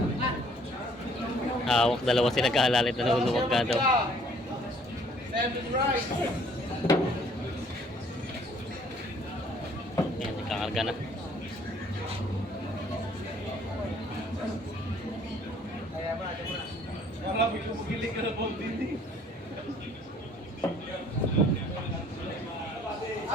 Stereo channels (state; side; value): normal; both; correlation 0.59